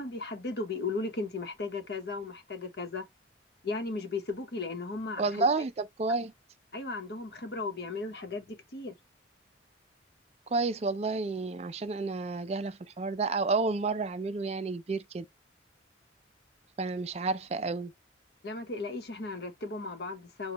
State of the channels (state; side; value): normal; both; correlation 0.16